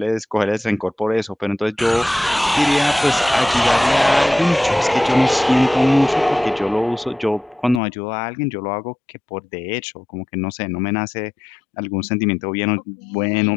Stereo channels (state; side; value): drops out; right; at 7.8 s